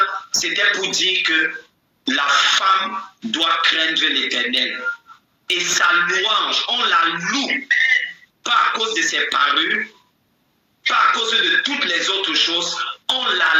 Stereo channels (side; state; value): both; identical; correlation 1.00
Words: c'était pour dire que la femme doit craindre l'Éternel. Et sa louange, on la loue, pas à cause de ses parures, pas à cause de toutes les autres choses, on la